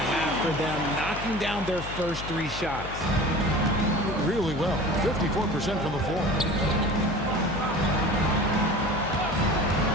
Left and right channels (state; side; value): noise; left; hum, 10 dB below the sound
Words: for them, knocking down their first 3 shots. Really well. 54% from the floor.